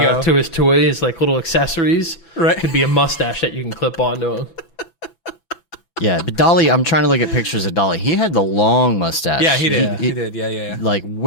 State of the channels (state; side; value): late; right; 6.0 ms